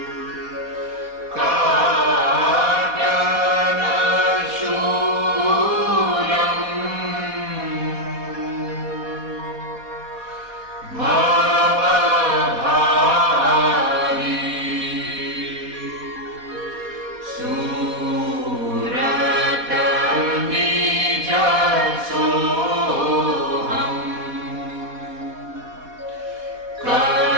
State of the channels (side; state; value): left; late; 4.1 ms